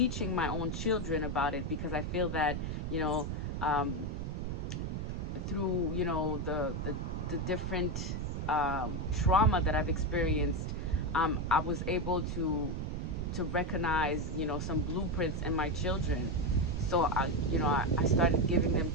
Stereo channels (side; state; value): right; noise; rumble, 3 dB below the sound